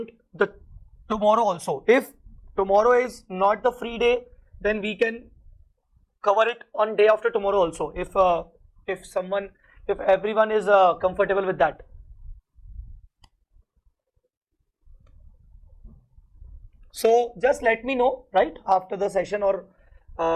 the tomorrow also. If tomorrow is not the free day, then we can cover it on day after tomorrow also, if everyone is comfortable with that. So just let me know right after the session or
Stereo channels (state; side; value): identical; both; correlation 1.00